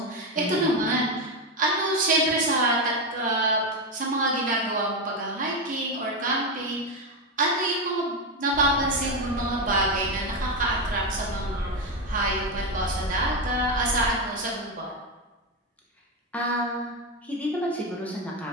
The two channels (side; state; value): both; normal; correlation 0.11